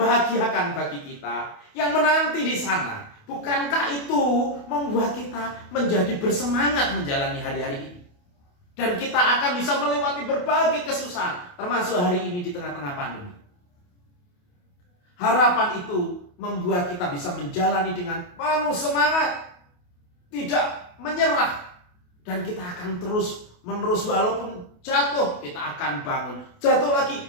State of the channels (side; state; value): right; late; 28 ms